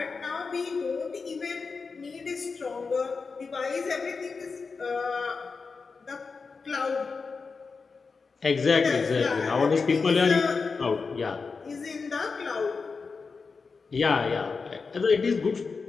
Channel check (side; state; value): right; quieter; 4.7 dB